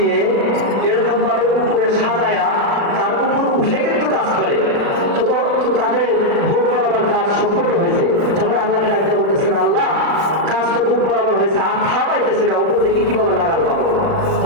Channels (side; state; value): left; late; 36 ms